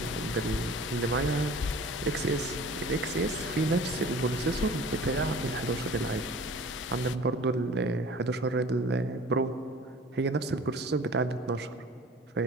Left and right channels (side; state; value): both; normal; correlation 0.45